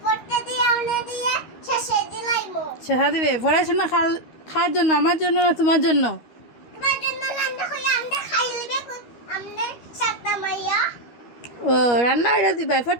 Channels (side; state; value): right; late; 13 ms